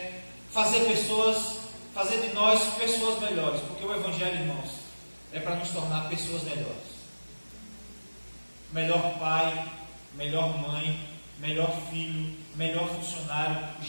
fazer de nós pessoas melhores, porque o Evangelho, irmãos, é para nos tornar pessoas melhores. Melhor pai, melhor mãe, melhor filho, melhor funcionário.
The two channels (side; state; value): both; inverted; correlation -1.00